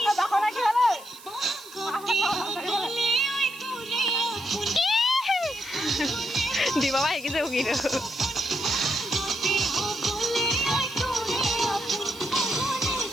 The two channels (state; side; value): noise; right; hiss, 20 dB below the sound